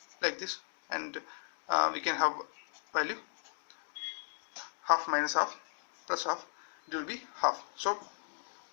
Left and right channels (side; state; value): right; silent; digital silence